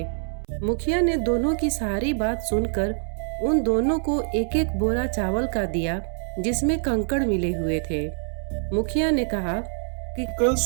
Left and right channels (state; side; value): silent; left; 62 dB below the other